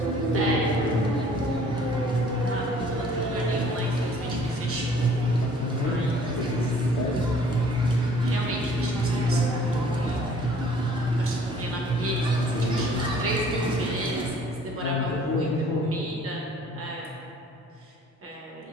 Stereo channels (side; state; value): both; normal; correlation 0.55